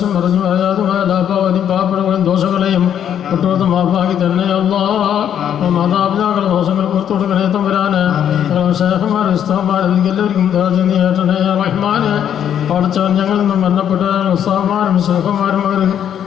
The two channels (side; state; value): right; quieter; 9.5 dB